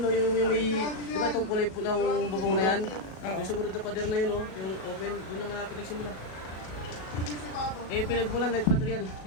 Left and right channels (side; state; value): right; late; 37 ms